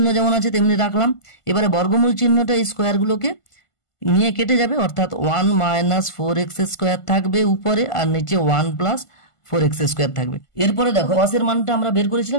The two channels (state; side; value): late; right; 1.5 ms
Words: যেমন আছে তেমনি রাখলাম। এবারে বর্গমূল চিহ্নটা এই স্কোয়ারগুলোকে নিয়ে কেটে যাবে, অর্থাৎ 1 মাইনাস 4x স্কোয়ার থাকবে উপরে, আর নিচে 1 প্লাস 4x স্কোয়ার থাকবে। এরপরে দেখো কস এর মানটা আমরা বের